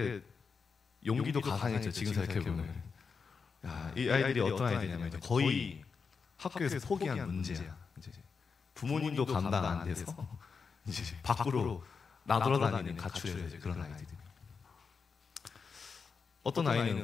용기도 가상했죠. 지금 생각해보면. 야, 이 아이들이 어떤 아이들이냐면 이제 거의 학교에서 포기한 문제야. 이제 부모님도 감당 안 돼서 이제 밖으로 나돌아다니는 가출해서 이제 그런 아이들이. 어떤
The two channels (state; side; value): quieter; right; 5.4 dB